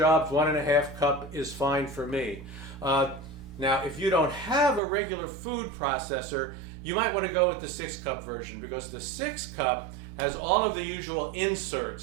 1.5 cup is fine for me. Now, if you don't have a regular food processor, you might want to go with the 6 cup version, because the 6 cup has all of the usual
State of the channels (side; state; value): left; drops out; at 4.8 s